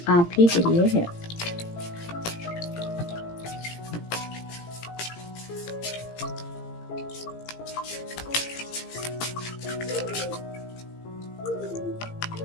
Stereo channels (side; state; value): right; late; 17 ms